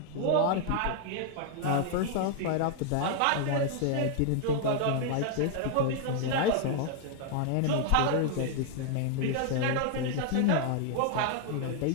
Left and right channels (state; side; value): different; both; correlation 0.00